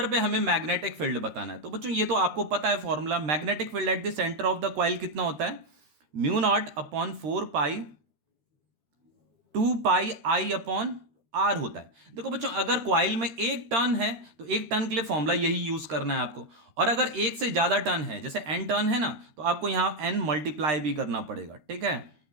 पे हमें मैग्नेटिक फील्ड बताना है। तो बच्चों ये तो आपको पता है formula, magnetic field at the centre of the coil कितना होता है, mu naught upon 4 pi 2 pi upon R होता है। देखो बच्चों अगर कॉइल में एक टर्न है तो एक टर्न के लिए फॉर्मूला यही यूज करना है आपको, और अगर एक से ज्यादा टर्न है, जैसे एन टर्न है ना, तो आपको यहां एन मल्टीप्लाई भी करना पड़ेगा। ठीक है,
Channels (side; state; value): left; late; 13 ms